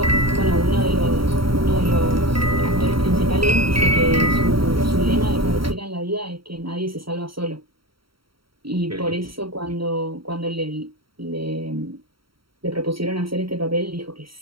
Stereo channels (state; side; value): late; left; 0.74 ms